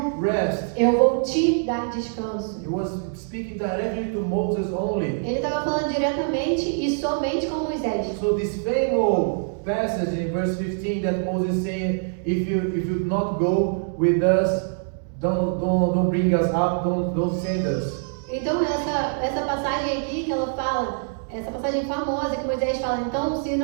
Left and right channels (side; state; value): left; silent; digital silence